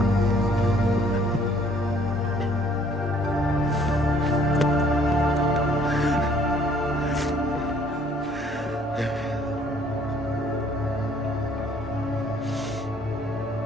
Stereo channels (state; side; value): normal; both; correlation 0.60